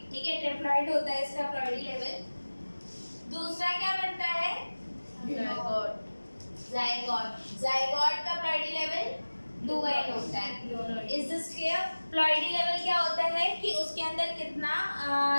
ठीक है। ट्रिप्लॉइड होता है इसका प्लॉइडी लेवल। दूसरा क्या बनता है? जायगोट। जायगोट का प्लॉइडी लेवल 2n होता है। Is this clear? Ploidy level क्या होता है कि उसके अंदर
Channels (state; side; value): inverted; both; correlation -1.00